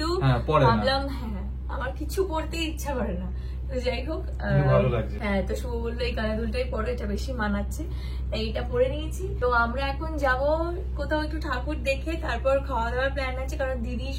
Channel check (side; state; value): both; identical; correlation 1.00